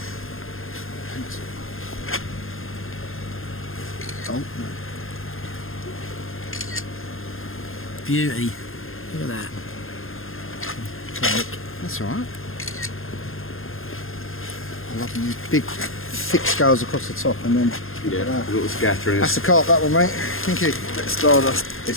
Oh, no. Beauty. Look at that. That's all right. I love them big, thick scales across the top, and then Yeah, a little scattering. that's the carp, that one, mate. Thank you. Stardust.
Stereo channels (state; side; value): late; right; 0.60 ms